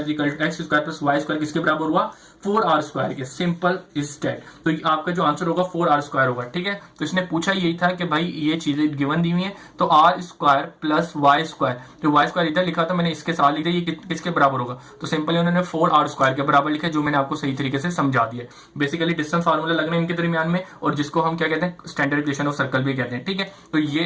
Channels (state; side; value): identical; both; correlation 1.00